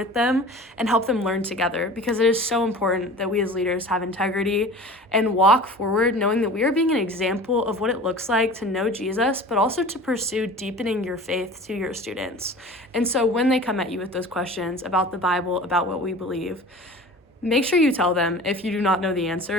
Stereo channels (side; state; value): both; normal; correlation 0.39